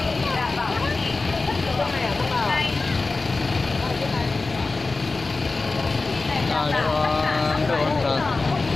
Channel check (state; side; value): quieter; right; 3.6 dB